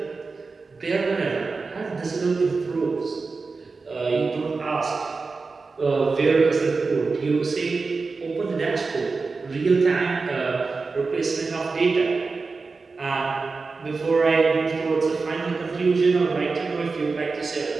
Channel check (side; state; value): left; quieter; 4.2 dB